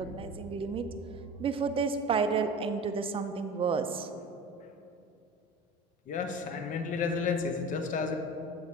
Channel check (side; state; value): both; normal; correlation 0.36